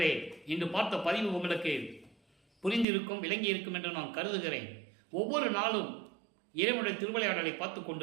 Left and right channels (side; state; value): left; drops out; at 2.9 s